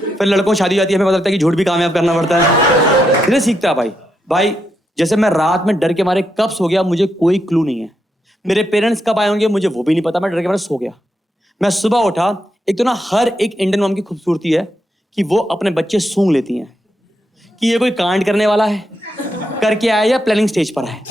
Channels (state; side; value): normal; both; correlation 0.82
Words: फिर लड़कों को शादी हो जाती है, हमें पता लगता है कि झूठ भी कामयाब करना पड़ता है। धीरे सीखता है भाई। जैसे मैं रात में डर के मारे कब सो गया मुझे कोई क्लू नहीं है। मेरे पेरेंट्स कब आए होंगे मुझे वो भी नहीं पता, मैं डर के मारे सो गया। मैं सुबह उठा, एक तो ना हर एक इंडियन मॉम की खूबसूरती है कि वो अपने बच्चे सूंघ लेती हैं कि ये कोई कांड करने वाला है, करके आया या प्लानिंग स्टेज पर है।